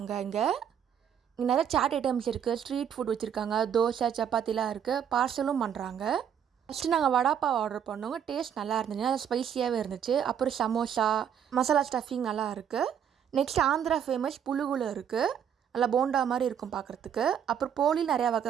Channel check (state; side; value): quieter; left; 8.6 dB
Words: இங்கே நிறைய சாட் ஐட்டம்ஸ் இருக்குது. ஸ்ட்ரீட் ஃபுட் வச்சுருக்காங்க. தோசை, சப்பாத்திலாம் இருக்குது. பார்சலும் பண்ணுறாங்க. ஃபஸ்ட்டு நாங்கள் வடாப்பாவ் ஆர்டர் பண்ணோங்க. டேஸ்ட் நல்லா இருந்துச்சு. அது ஸ்பைஸியாகவே இருந்துச்சு. அப்புறம் சமோசா, மசாலா ஸ்டஃபிங் நல்லா இருக்குது. நெக்ஸ்ட் ஆந்திரா ஃபேமஸ் புழுகுல இருக்குது. நல்லா போண்டா மாதிரி இருக்கும் பார்க்குறதுக்கு. அப்புறம் போலி நிறையா